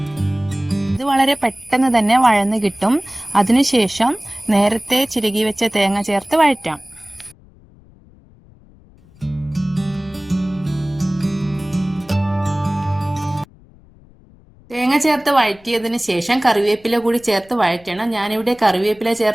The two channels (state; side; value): noise; left; rumble, 26 dB below the sound